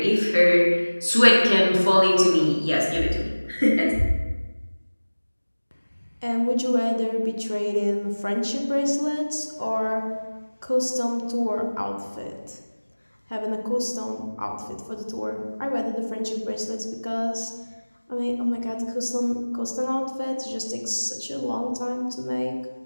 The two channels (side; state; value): both; inverted; correlation -1.00